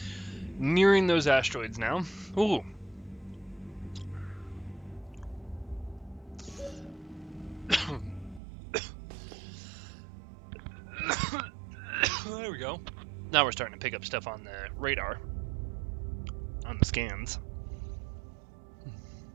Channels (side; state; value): left; drops out; at 8.4 s